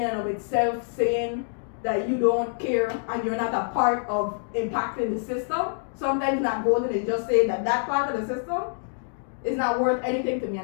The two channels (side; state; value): right; silent; digital silence